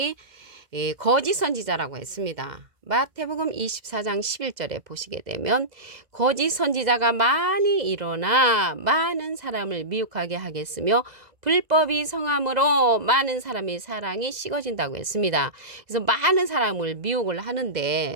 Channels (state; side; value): late; left; 2.0 ms